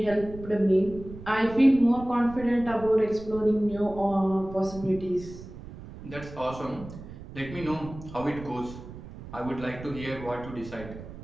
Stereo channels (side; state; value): right; noise; rumble, 14 dB below the sound